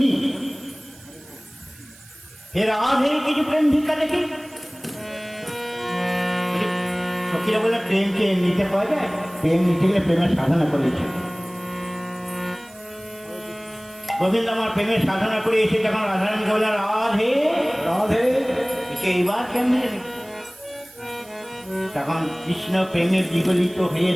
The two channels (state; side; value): noise; right; hiss, 23 dB below the sound